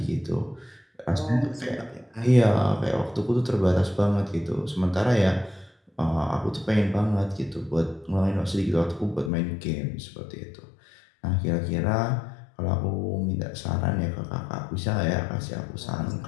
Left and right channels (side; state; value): right; drops out; at 9.3 s